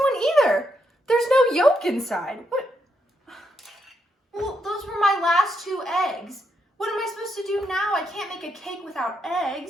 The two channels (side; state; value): both; normal; correlation 0.79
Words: either. There's no yolk inside. What? Well, those were my last two eggs. What am I supposed to do now? I can't make a cake without